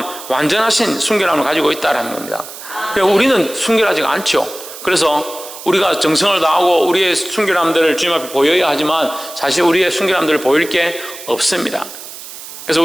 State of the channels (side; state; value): right; noise; hiss, 13 dB below the sound